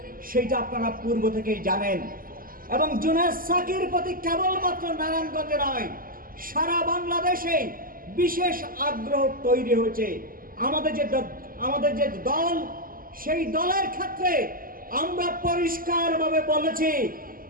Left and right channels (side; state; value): left; late; 0.41 ms